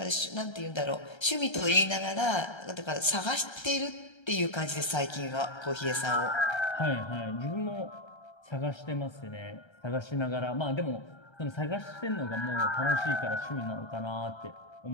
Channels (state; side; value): late; right; 1.3 ms